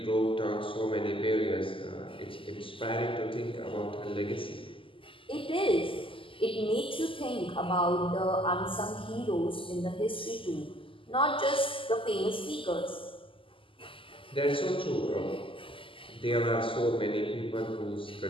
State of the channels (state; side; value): late; right; 0.25 ms